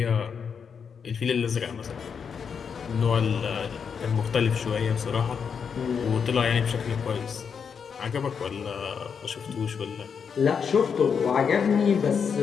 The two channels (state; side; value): quieter; right; 6.6 dB